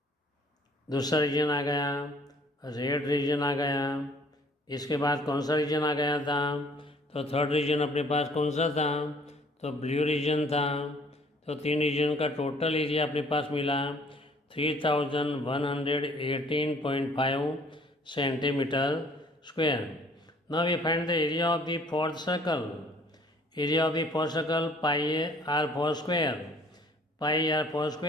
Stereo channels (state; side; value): normal; both; correlation 0.57